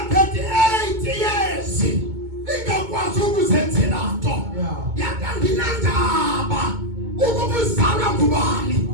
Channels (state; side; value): late; left; 2.2 ms